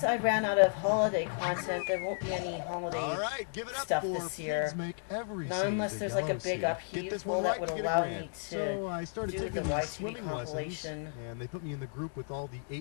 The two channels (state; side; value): silent; right; digital silence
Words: I ran out of holiday content, there won't be any holiday stuff this year. Not unless there's like a big upheaval that would allow me to do the YTV compilation. And they put me in the group with all the